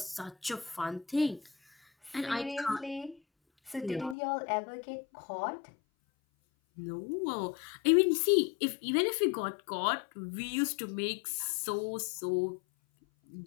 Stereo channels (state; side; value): drops out; right; at 4.2 s